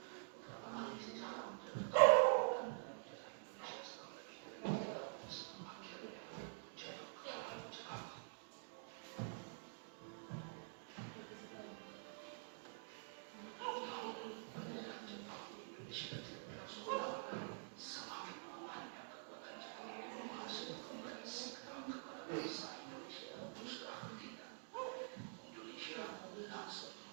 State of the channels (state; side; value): silent; left; digital silence